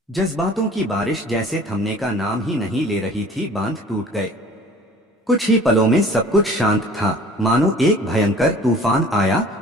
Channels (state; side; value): normal; both; correlation 0.48